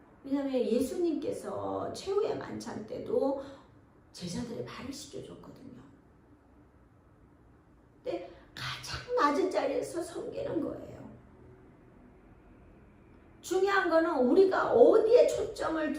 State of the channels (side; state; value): both; identical; correlation 1.00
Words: 왜냐하면 예수님께서 최후의 만찬 때도 제자들의 발을 씻겨줬거든요. 근데 가장 낮은 자리에서 섬기는 거예요. 중요한 거는 우리가 어디에 초점을